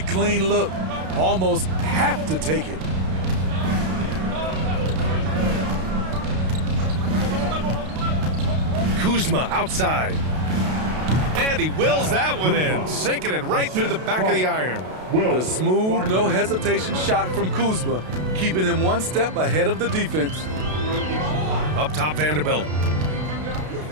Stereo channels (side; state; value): left; late; 32 ms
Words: clean look. Almost have to take it. Kuzma outside. And he wills that one in, sinking it right through the back of the iron. The smooth, no hesitation shot from Kuzma, keeping him one step ahead of the defense. Up top, Vanderbilt.